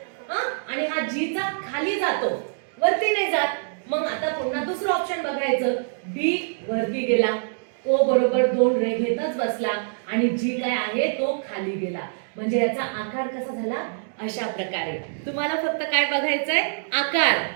आणि हा जी चा खाली जातो, वरती नाही जात. मग आता पुन्हा दुसरं ऑप्शन बघायचं. बी वरती गेला, ओ बरोबर 2 रेषेतच बसला आणि जी काय आहे तो खाली गेला. म्हणजे याचा आकार कसा झाला? अशा प्रकारे. तुम्हाला फक्त काय बघायचंय? आकार.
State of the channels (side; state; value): left; silent; digital silence